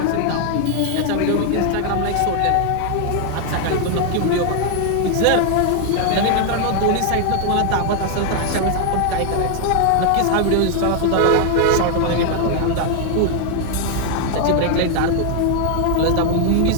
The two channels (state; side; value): different; both; correlation 0.00